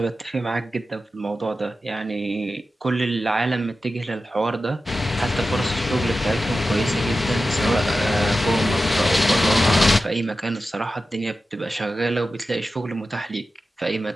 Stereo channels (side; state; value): both; normal; correlation 0.93